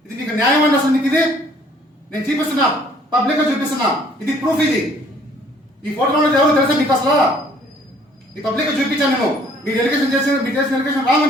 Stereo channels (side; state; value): both; normal; correlation 0.59